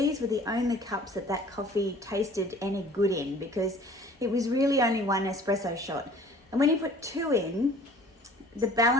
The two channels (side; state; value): both; normal; correlation 0.50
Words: were the only cups that coffee tasted any good in because it was really only one espresso shot. And when you put two in, the